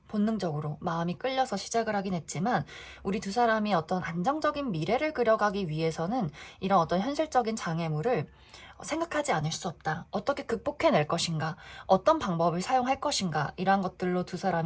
본능적으로 마음이 끌려서 시작을 하긴 했지만 우리 두 사람이 어떤 안정적인 미래를 그려가기 위해서는 이런 어떤 현실적인 장애물을 생각하지 않을 수 없다. 어떻게 극복해낼 것인가? 어떤 방법을 사용할 것인가? 이러한 것들로 두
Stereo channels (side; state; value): both; identical; correlation 1.00